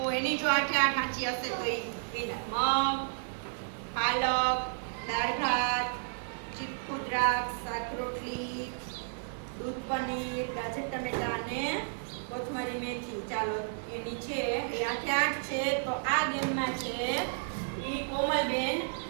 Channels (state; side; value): silent; left; digital silence